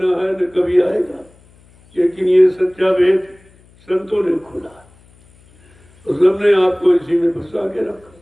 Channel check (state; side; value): noise; left; hum, 29 dB below the sound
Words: है, न कभी आएगा। लेकिन ये सच्चा वेद संतों ने खोला, तो सबने आपको इसी में फंसा के रखा,